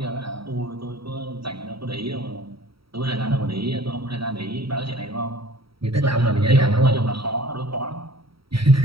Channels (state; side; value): late; left; 0.75 ms